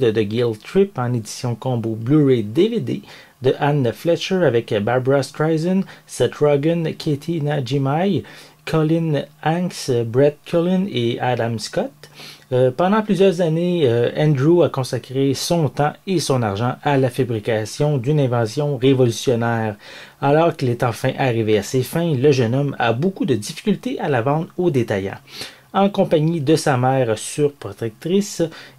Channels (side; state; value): both; identical; correlation 1.00